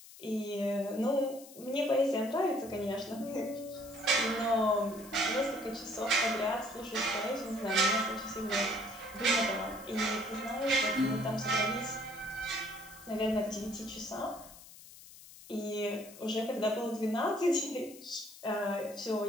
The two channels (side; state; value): left; noise; hiss, 18 dB below the sound